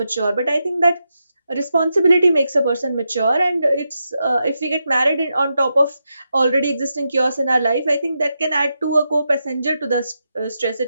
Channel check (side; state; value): both; inverted; correlation -0.86